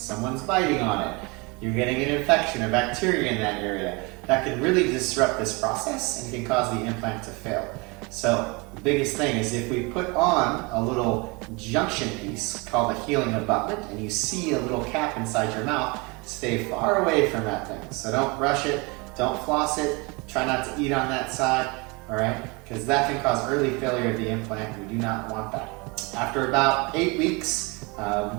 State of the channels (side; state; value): left; quieter; 27.9 dB